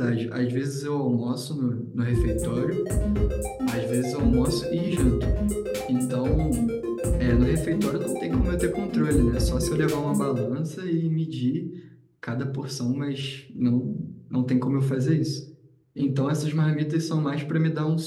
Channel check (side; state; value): both; identical; correlation 1.00